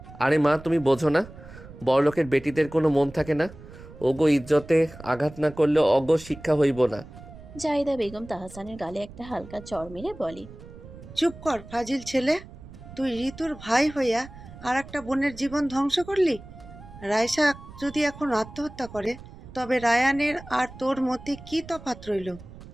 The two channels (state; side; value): noise; right; rumble, 17 dB below the sound